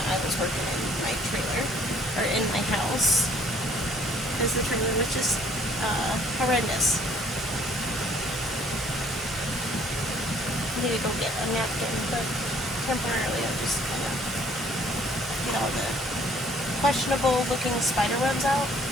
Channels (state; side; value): normal; both; correlation 0.60